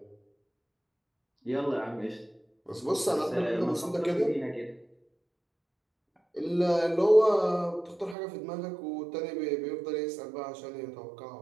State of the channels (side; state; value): left; drops out; at 8.2 s